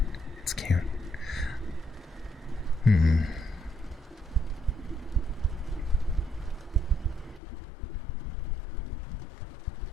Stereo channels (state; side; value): drops out; right; at 7.4 s